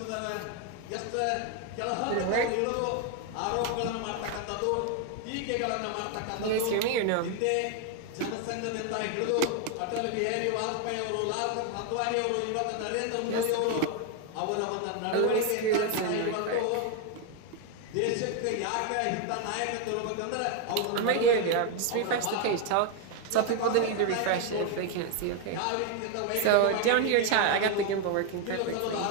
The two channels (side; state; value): both; different; correlation 0.01